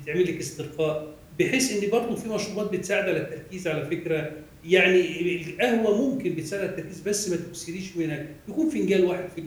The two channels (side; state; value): both; identical; correlation 1.00